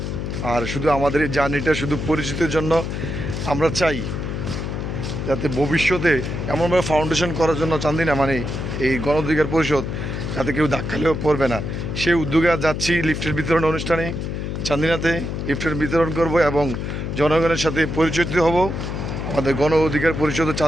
আর শুধু আমাদের এই জার্নিটা শুধু পরিচিতির জন্য, আমরা চাই যাতে ভবিষ্যতে এমনভাবে ফাউন্ডেশন করার জন্য চান্দিনা মানে এই গণ অধিকার পরিষদ যাতে কেউ ধাক্কালেও পড়বে না, সেই উদ্যোগে যাচ্ছি লিফটের বিতরণ অনুষ্ঠানে চান্দিনাতে। লিফটের বিতরণ করব এবং জনগণের সাথে পরিচিত হব। আমাদের গণ অধিকার পরিষদ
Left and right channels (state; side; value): noise; left; hum, 4 dB below the sound